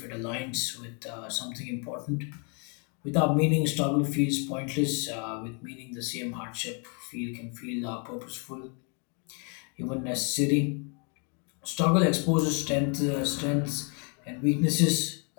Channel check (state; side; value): quieter; right; 37.3 dB